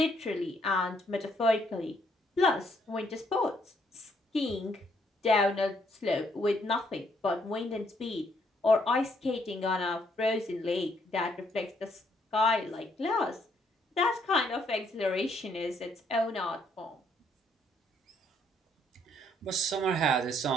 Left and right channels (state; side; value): normal; both; correlation 0.70